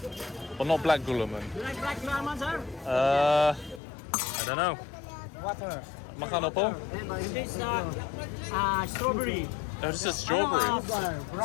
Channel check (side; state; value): right; drops out; at 3.8 s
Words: but not black gulaman. You like black gulaman, sir? I don't know. Water. Makano po? This strawberry. Oh, this is strawberry.